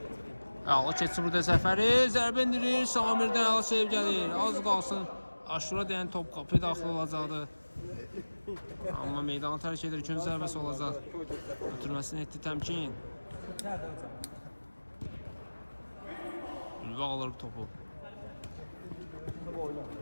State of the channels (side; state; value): both; inverted; correlation -1.00